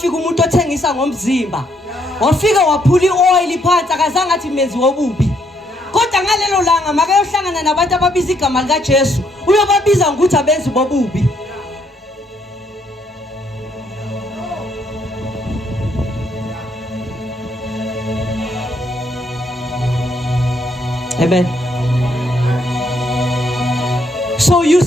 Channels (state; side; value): normal; both; correlation 0.72